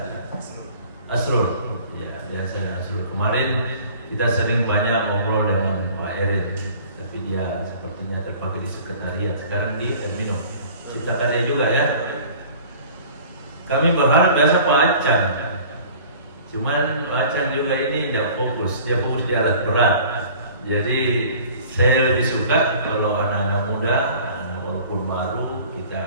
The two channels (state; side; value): inverted; both; correlation -0.47